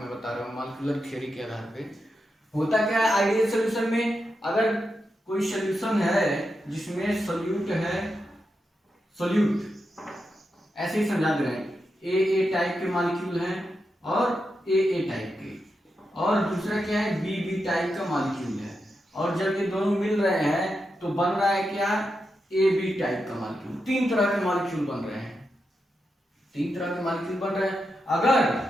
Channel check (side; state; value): both; normal; correlation 0.87